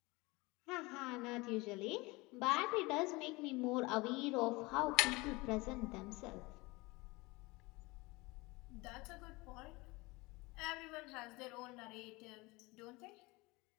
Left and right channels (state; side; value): quieter; right; 23.6 dB